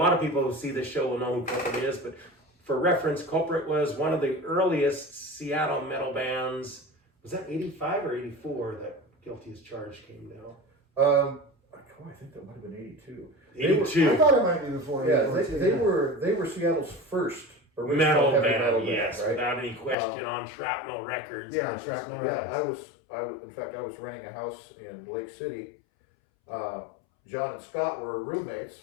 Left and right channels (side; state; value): right; drops out; at 20.0 s